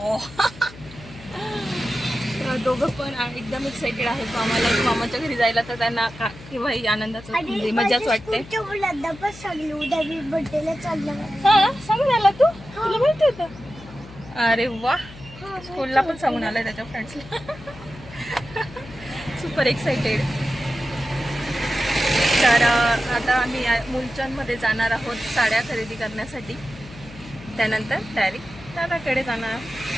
दोघं पण एकदम एक्साइटेड आहेत. मामाच्या घरी जायला. तर त्यांना केव्हाही आनंदाचं म्हणजे मजाच वाटते. हा, सांगून आला तू? तुला माहिती होतं? अरे वा, स्कूलला पण सांगून आलाय त्याच्या फ्रेंड्सला. Super excited. तर आता आम्ही मुलचंदमध्ये जाणार आहोत साड्या खरेदी करण्यासाठी. त्यानंतर डायरेक्ट दादाकडे जाणार.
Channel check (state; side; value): noise; left; hum, 18 dB below the sound